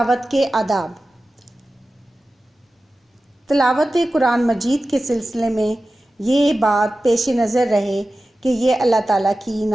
کے آداب۔ تلاوت قرآن مجید کے سلسلے میں یہ بات پیش نظر رہے کہ یہ اللہ تعالیٰ کی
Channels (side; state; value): both; normal; correlation 0.95